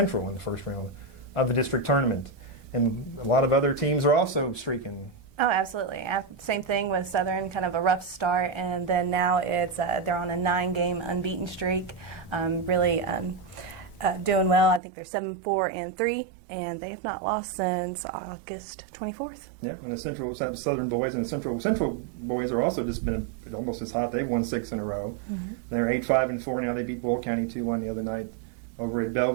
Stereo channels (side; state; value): left; drops out; at 14.8 s